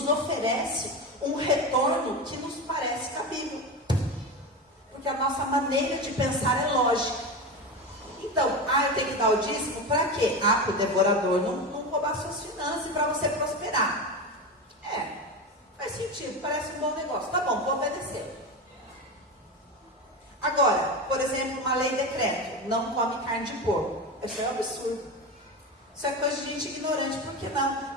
oferece um retorno que nos parece cabível. Porque a nossa maneira de pensar é lógica. Então, eu tenho que dar o dízimo para quê? Para o devorador não roubar suas finanças e para você prosperar. Faz sentido, parece um bom negócio. Tá bom, vou obedecer. Agora, por exemplo, uma lei decreto, não come carne de porco. Isso é um absurdo. Isso é coisa de gente ignorante. Por que não?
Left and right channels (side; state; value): both; normal; correlation 0.21